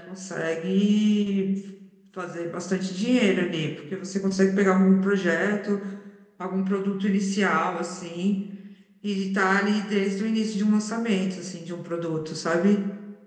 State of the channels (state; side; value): identical; both; correlation 1.00